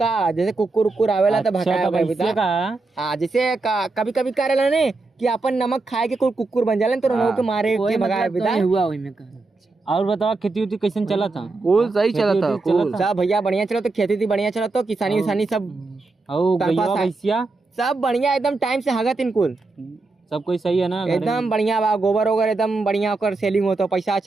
जैसे कुकुर उकुर आवेला तो भगाया। हाँ जैसे कभी कभी करेला ने कि अपन नमक खाए के कोई कुकुर बन जाला तो उनको के मारे के भगाए बिदा हुआ ओइ में। और बताओ खेती उती कैसे चला था? कूल सही चला था, कूल सब भैया बढ़िया चला तो, खेती थी बढ़िया चला तो, किसानी विसानी सब भैया सब बढ़िया एकदम टाइम से हगत इनकुल सब कोई सही है ना, एकदम बढ़िया बा। गोबर वोबर एकदम बढ़िया कर सेलिंग होता, पैसा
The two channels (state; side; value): quieter; left; 3.5 dB